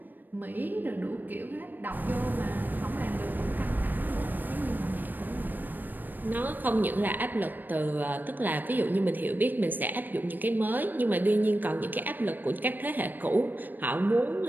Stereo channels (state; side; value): late; left; 0.090 ms